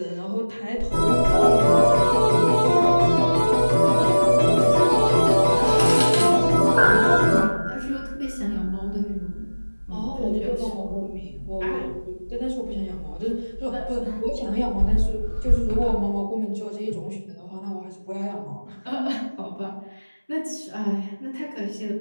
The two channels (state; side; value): inverted; both; correlation -1.00